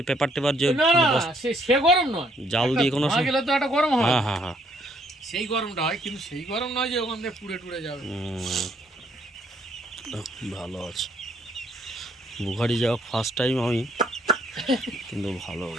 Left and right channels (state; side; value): normal; both; correlation 0.66